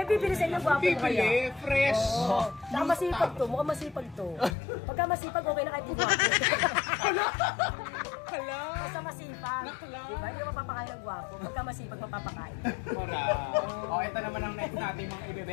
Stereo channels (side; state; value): right; drops out; at 4.5 s